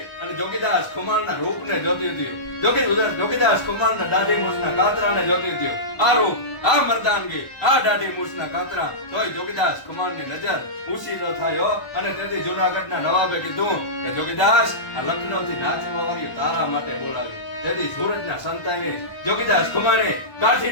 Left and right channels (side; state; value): right; late; 1.0 ms